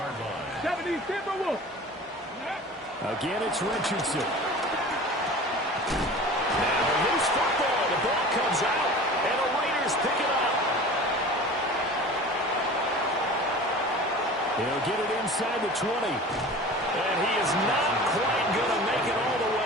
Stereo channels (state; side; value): normal; both; correlation 0.39